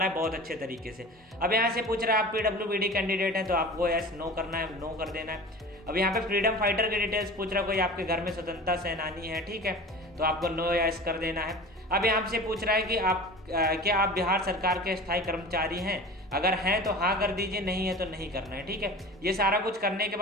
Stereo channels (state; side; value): normal; both; correlation 0.37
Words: है बहुत अच्छे तरीके से। अब यहाँ से पूछ रहा है आप PWBD कैंडिडेट हैं तो आपको यस नो करना है, नो कर देना है। अब यहाँ पे फ्रीडम फाइटर के डिटेल्स पूछ रहा है, कोई आपके घर में स्वतंत्रता सेनानी है, ठीक है, तो आपको नो यस कर देना है। अब यहाँ से पूछ रहा है कि क्या आप बिहार सरकार के स्थायी कर्मचारी हैं, अगर हैं तो हाँ कर दीजिए, नहीं है तो नहीं करना है, ठीक है। ये सारा कुछ करने के